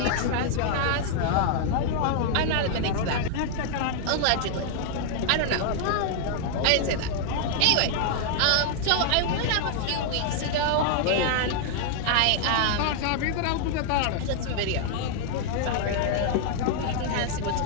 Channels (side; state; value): both; different; correlation 0.00